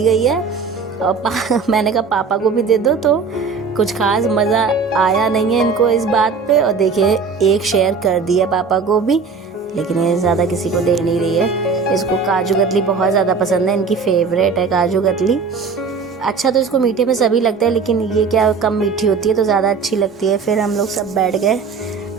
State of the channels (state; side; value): quieter; left; 5.1 dB